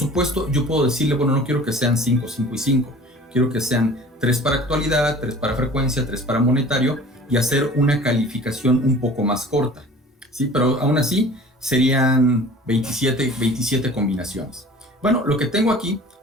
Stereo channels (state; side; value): normal; both; correlation 0.45